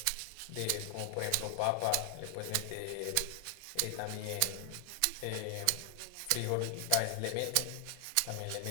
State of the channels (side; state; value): both; different; correlation 0.00